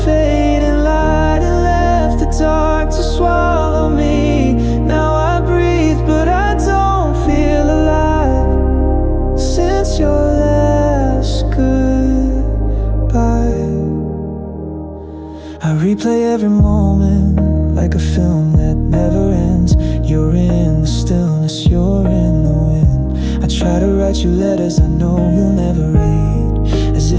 fading light and left the dark to swallow me. Now I breathe, but I don't feel alive since your last goodbye. I replay every moment like a film that never ends. You're in the stillness, you're in the wind. I try to write you letters I know you'll never read, as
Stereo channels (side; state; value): both; identical; correlation 1.00